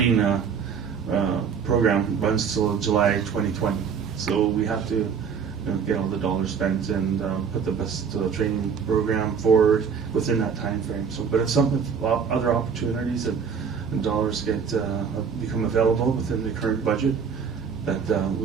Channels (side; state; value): left; quieter; 6.5 dB